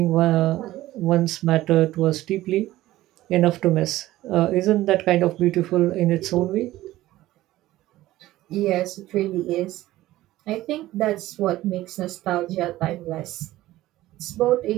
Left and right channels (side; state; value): left; quieter; 15.9 dB